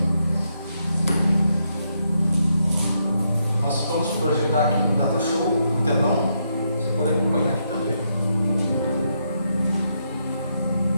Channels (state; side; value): inverted; both; correlation -0.79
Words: Nós vamos projetar aqui no Data Show, no telão. Você pode acompanhar aqui também.